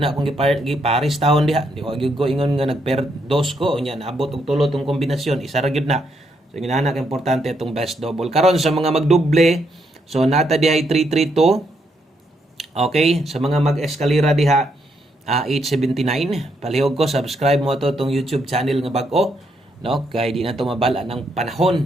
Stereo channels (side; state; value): both; normal; correlation 0.76